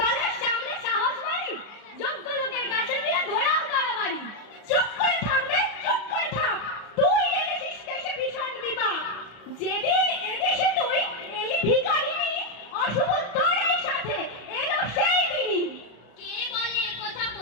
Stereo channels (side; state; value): right; late; 34 ms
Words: সামনে সাহস বাড়ি, যোগ্য লোকের কাছে দিয়ে ঘোরাও তাড়াবাড়ি। চুপ করে থাকবে, চুপ করে থাক, তুই এনেছিস দেশে ভীষণ বিপদ। যেদিন এদেশে তুই এলি ভিখারিনী, অশুভ তোর এই সাথে এলো সেই দিনই। কে বলে কথা